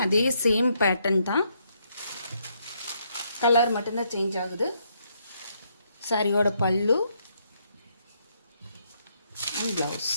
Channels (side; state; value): both; inverted; correlation -0.74